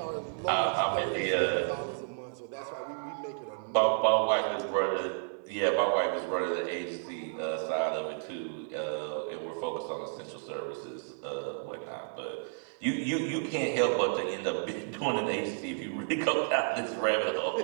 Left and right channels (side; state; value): left; silent; 57 dB below the other